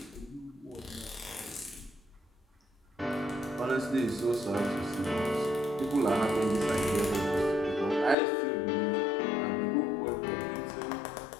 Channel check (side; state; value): right; drops out; at 8.2 s